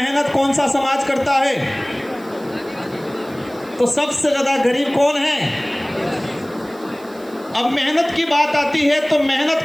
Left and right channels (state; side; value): noise; right; hiss, 25 dB below the sound